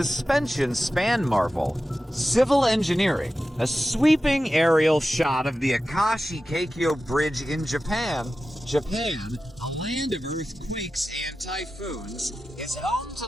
span marvel. Civil engineering, a sweeping aerial shot of the Akashi Kaikyō Bridge in Japan, a land of earthquakes and typhoons, is home to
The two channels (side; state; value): both; normal; correlation 0.93